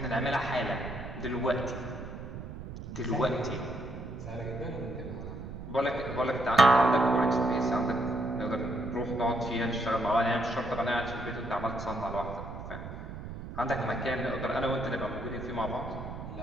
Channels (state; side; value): noise; right; rumble, 10 dB below the sound